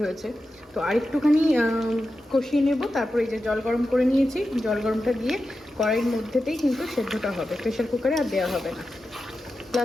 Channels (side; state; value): both; normal; correlation 0.91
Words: হয়েছে। তো আর একটুখানি কষিয়ে নেব, তারপরে এই যে জল গরম করে নিয়েছি, জল গরমটা দিয়ে কড়াইয়ের মধ্যেতেই কিন্তু সেদ্ধটা হবে, প্রেশার কুকারে আর দেওয়া হবে না।